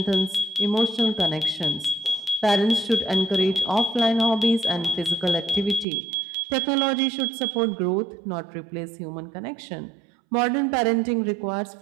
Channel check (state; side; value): drops out; left; at 5.9 s